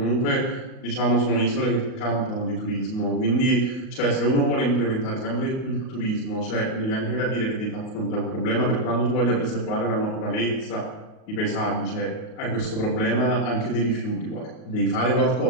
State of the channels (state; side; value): late; right; 38 ms